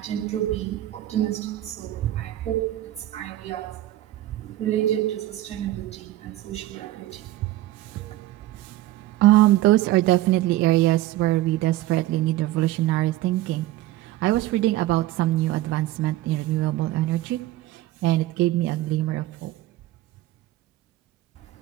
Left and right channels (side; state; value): left; quieter; 15.4 dB